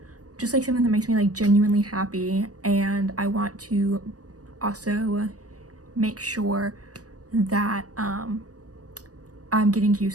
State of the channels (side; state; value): left; late; 0.67 ms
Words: just like something that makes me like genuinely happy, and I want to also make sure that I'm getting